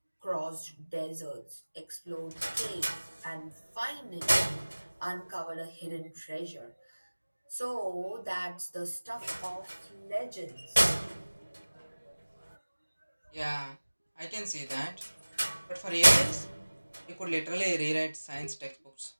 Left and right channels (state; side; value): inverted; both; correlation -1.00